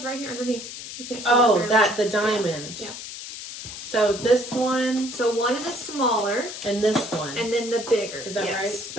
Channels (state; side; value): noise; left; hiss, 10 dB below the sound